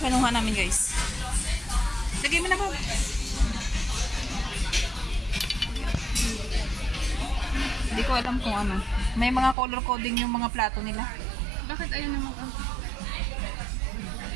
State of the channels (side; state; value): left; drops out; at 9.6 s